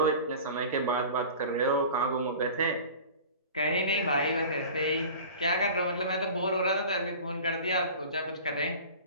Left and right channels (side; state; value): both; inverted; correlation -0.39